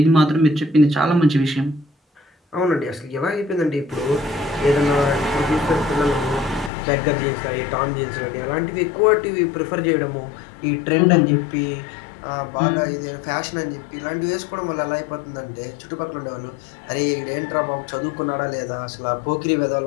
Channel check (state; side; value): drops out; right; at 6.7 s